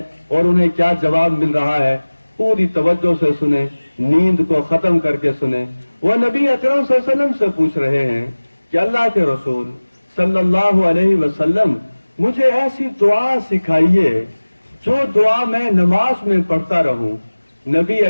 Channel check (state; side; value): inverted; both; correlation -1.00